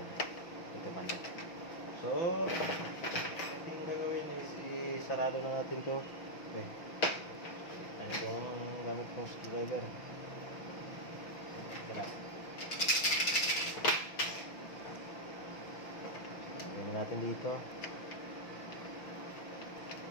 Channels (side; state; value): right; late; 6.0 ms